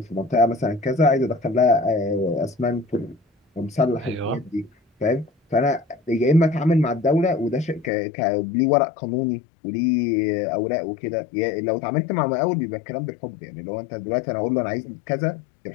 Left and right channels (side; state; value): right; drops out; at 7.9 s